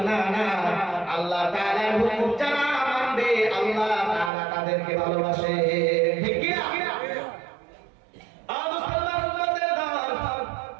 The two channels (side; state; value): left; drops out; at 4.3 s